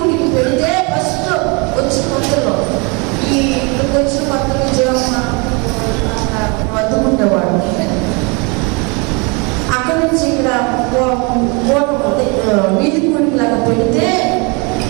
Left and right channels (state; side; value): quieter; left; 30.7 dB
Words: పెడితే ఫస్ట్ వచ్చిన కొత్తలో ఇక్కడికి వచ్చిన కొత్తలో జీవన వద్దుకుండేవాడు. అక్కడి నుంచి ఇక్కడ వీధి కూడికి లాగా పెడితే